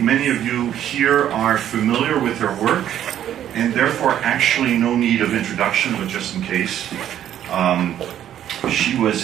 of you here are familiar with her work, and therefore actually no need of introduction, but just in case. She was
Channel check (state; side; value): quieter; left; 10.9 dB